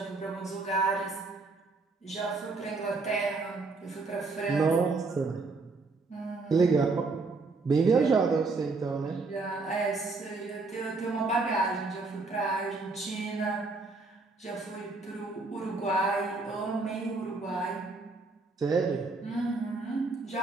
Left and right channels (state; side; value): quieter; left; 3.8 dB